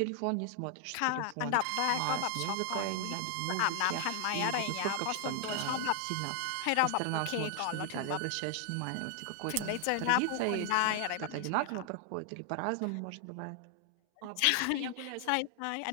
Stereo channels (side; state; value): both; different; correlation 0.00